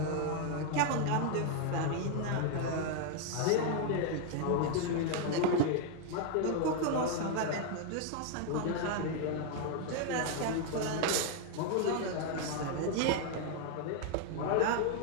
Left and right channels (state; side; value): different; both; correlation 0.00